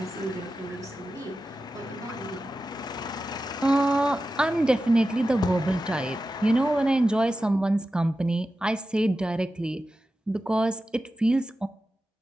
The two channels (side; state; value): both; normal; correlation 0.93